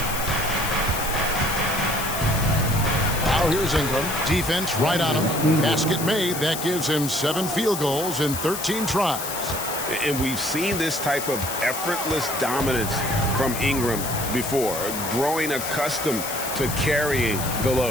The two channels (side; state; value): left; noise; hiss, 6 dB below the sound